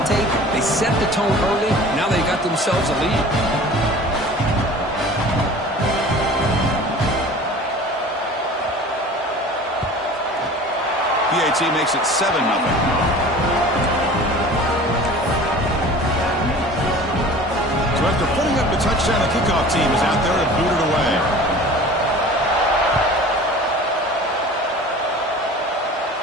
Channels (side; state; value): both; normal; correlation 0.42